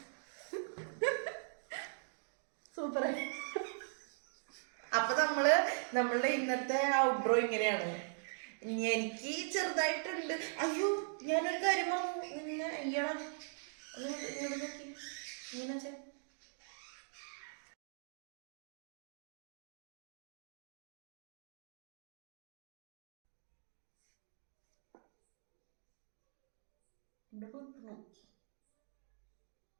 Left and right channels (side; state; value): left; silent; digital silence